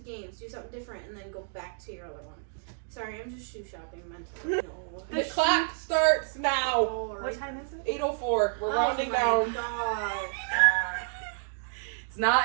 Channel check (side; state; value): left; silent; digital silence